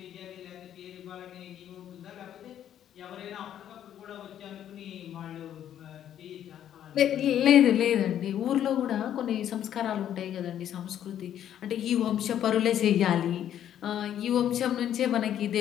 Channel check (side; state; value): right; quieter; 10.5 dB